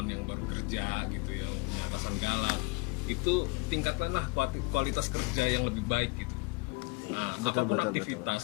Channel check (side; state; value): right; quieter; 26.6 dB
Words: yang baru kerja gitu, yang punya atasan galak, itu tingkatkanlah kualitas kerja yang lebih baik gitu. Nah, apapun